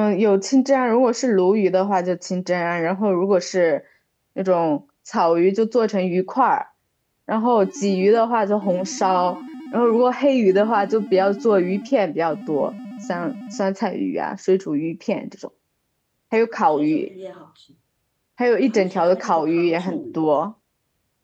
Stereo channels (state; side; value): identical; both; correlation 1.00